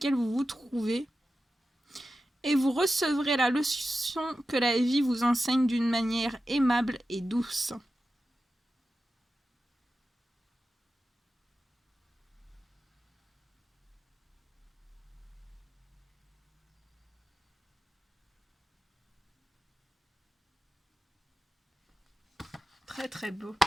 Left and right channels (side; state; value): both; normal; correlation 0.92